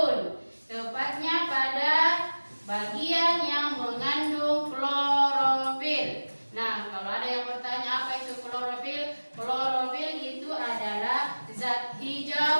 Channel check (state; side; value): inverted; both; correlation -1.00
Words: tepatnya pada bagian yang mengandung klorofil. Nah, kalau ada yang bertanya apa itu klorofil? Klorofil itu adalah zat